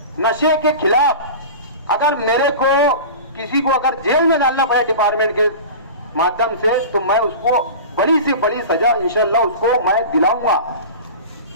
नशे के खिलाफ अगर मेरे को किसी को अगर जेल में डालना पड़े डिपार्टमेंट के माध्यम से तो मैं उसको बड़ी से बड़ी सजा इंशाल्लाह उसको मैं दिलाऊंगा।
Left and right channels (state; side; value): inverted; both; correlation -0.33